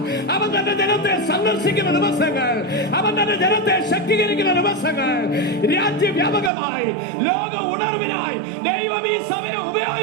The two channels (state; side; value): drops out; left; at 6.5 s